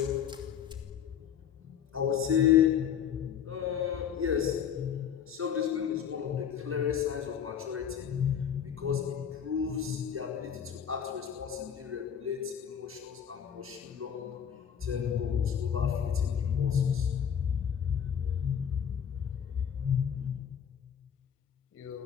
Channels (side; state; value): right; quieter; 8.4 dB